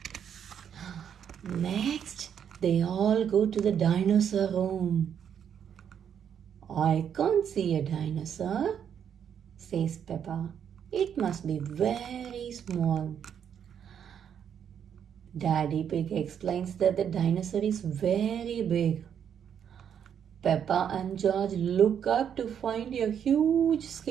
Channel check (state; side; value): quieter; left; 8.4 dB